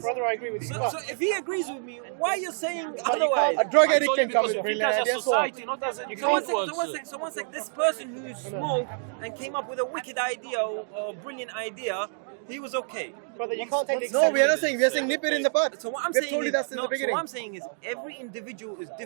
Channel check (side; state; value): left; silent; digital silence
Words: Brother, I agree with you. So if he agrees with me, why are you saying otherwise? A drug addict can come with brilliant ideas. So one sec, this person who smoked and came up with a wicked idea or a brilliant idea, he was okay. Brother, you can't take the No, we are not saying. We are saying nip it in the bud. So what I'm saying is every individual is